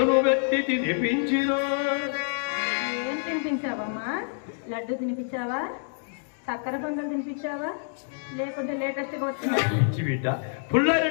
పెట్టి తినిపించిన. ఏం తినిపించావమ్మా? లడ్డు తినిపించావా? చక్కెర పొంగల్ తినిపించావా? లేకుంటే లేటెస్ట్గా వచ్చిన పిచ్చి బిడ్డ,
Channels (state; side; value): silent; right; digital silence